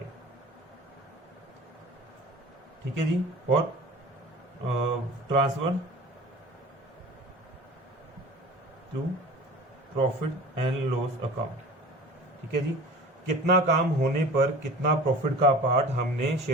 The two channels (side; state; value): both; normal; correlation 0.40